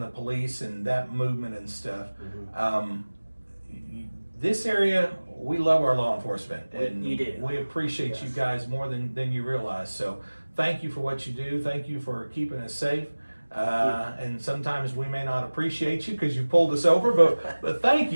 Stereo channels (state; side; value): inverted; both; correlation -1.00